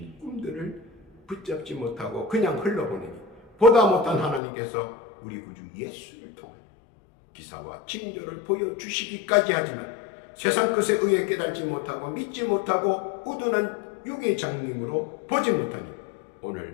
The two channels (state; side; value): drops out; right; at 4.4 s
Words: 꿈들을 붙잡지 못하고 그냥 흘러보내니 보다 못한 하나님께서 우리 구주 예수를 통하여 기사와 징조를 보여주시기까지 하지만 세상 것에 의해 깨달지 못하고 믿지 못하고 우둔한 육의 장님으로 보지 못하니